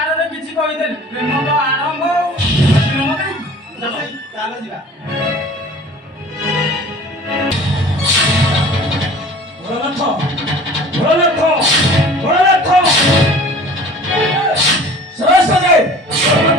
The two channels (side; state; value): both; normal; correlation 0.45